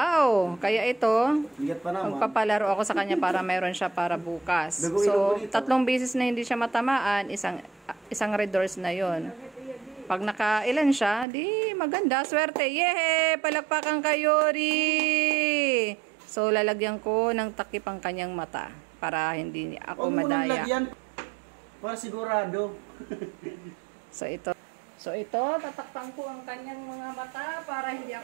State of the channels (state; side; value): drops out; left; at 11.2 s